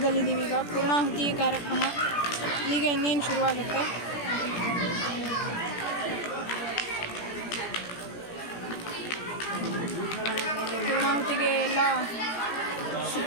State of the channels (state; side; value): late; right; 17 ms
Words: ಈಗ ಪೂರ್ಣಾಹುತಿ ಕಾರ್ಯಕ್ರಮ ಈಗ ಇನ್ನೇನು ಶುರುವಾಗುತ್ತೆ. ಪೂರ್ಣಾಹುತಿಗೆ ಎಲ್ಲ